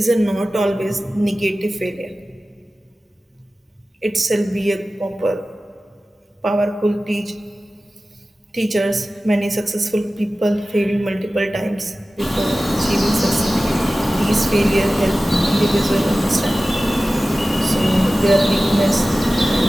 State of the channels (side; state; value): both; normal; correlation 0.96